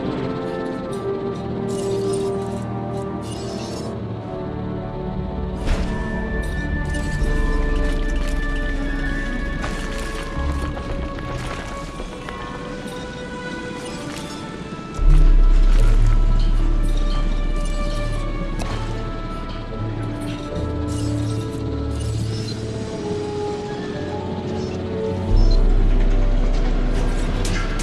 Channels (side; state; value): both; identical; correlation 1.00